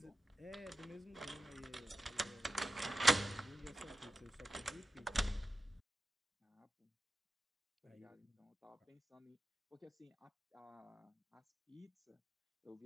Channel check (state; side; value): normal; both; correlation 0.91